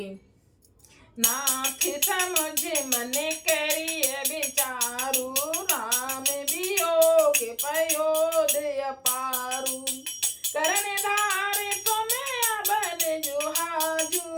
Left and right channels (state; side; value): identical; both; correlation 1.00